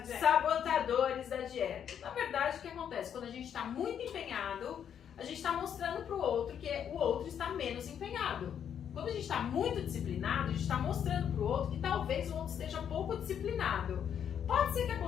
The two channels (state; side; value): quieter; right; 8.7 dB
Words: dieta. sabotadores da dieta. Na verdade, o que acontece? Quando a gente está muito empenhado, a gente está mostrando para o outro que o outro está menos empenhado. Quando a gente está muito disciplinado, a gente está mostrando para o outro que talvez o outro esteja pouco disciplinado. Pode ser que